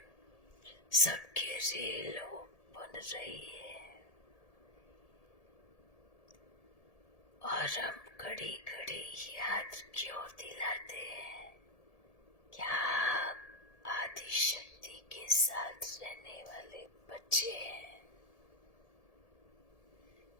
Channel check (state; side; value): late; right; 1.7 ms